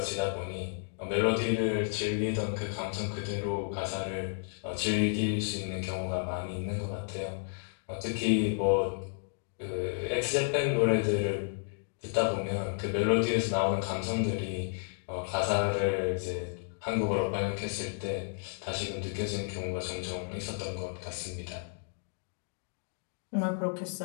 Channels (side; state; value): right; silent; digital silence